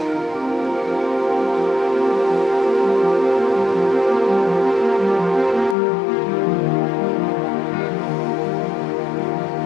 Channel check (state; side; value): drops out; right; at 5.8 s